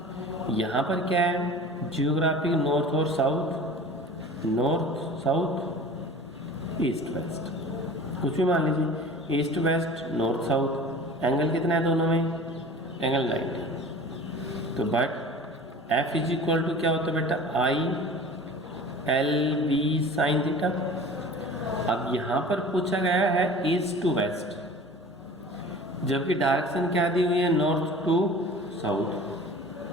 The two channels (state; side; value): normal; both; correlation 0.41